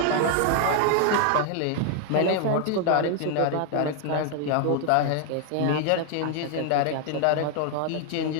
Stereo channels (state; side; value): different; both; correlation 0.00